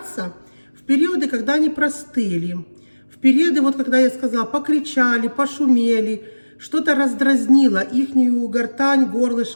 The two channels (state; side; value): inverted; both; correlation -1.00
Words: в периоды, когда они простыли, в периоды, вот когда я сказала, покричали, пошумели, что-то раздразнило ихнюю гортань,